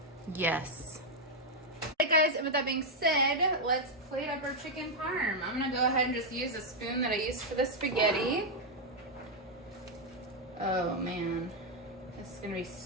yes. Alright guys, and with that being said, let's plate up our chicken parm. I'm gonna go ahead and just use a spoon that I used for the spaghetti. Oh man, this is gonna be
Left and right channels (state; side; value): normal; both; correlation 0.00